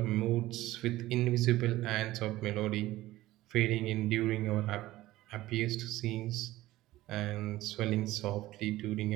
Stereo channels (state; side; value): quieter; left; 16.7 dB